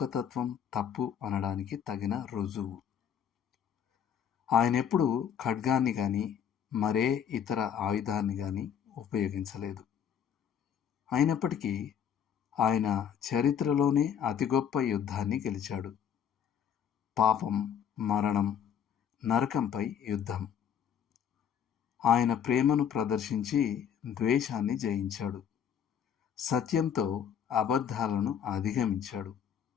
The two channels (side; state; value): right; quieter; 8.5 dB